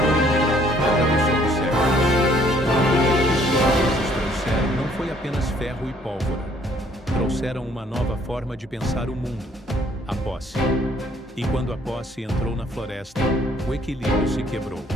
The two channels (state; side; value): normal; both; correlation 0.62